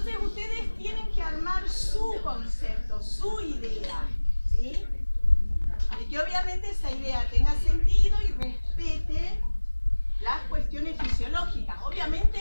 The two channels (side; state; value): both; inverted; correlation -1.00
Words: ustedes tienen que armar su concepto, su idea, ¿sí? Y que obviamente esa idea tenga sentido y respete las cuestiones fisiológicas. Obviamente,